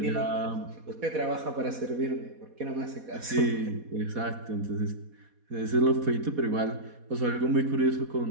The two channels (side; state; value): left; late; 4.1 ms